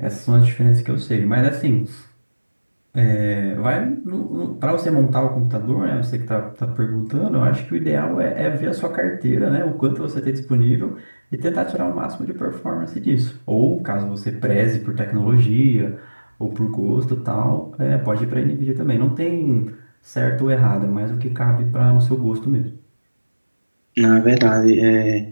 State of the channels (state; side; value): inverted; both; correlation -1.00